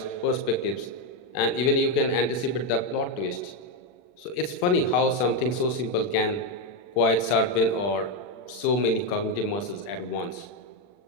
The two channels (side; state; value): right; late; 40 ms